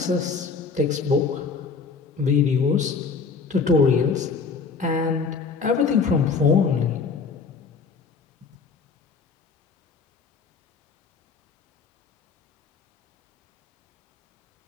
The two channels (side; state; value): right; quieter; 5.1 dB